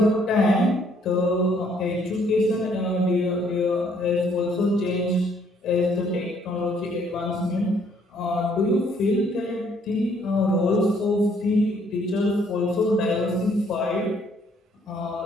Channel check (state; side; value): normal; both; correlation 0.65